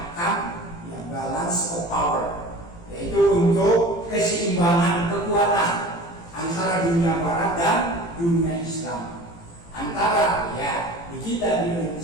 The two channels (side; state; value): right; late; 18 ms